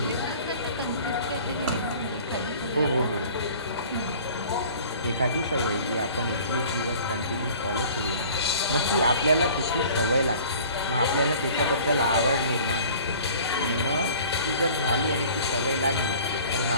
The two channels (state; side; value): inverted; both; correlation -0.47